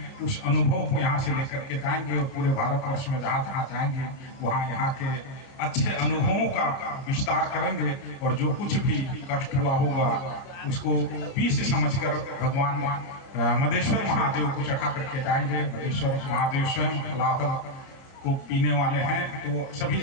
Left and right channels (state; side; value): late; right; 29 ms